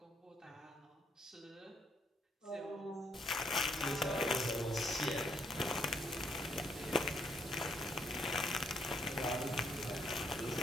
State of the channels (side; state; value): both; normal; correlation 0.71